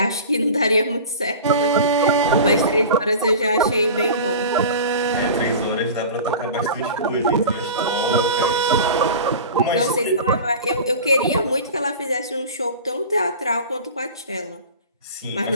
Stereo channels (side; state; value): both; inverted; correlation -0.35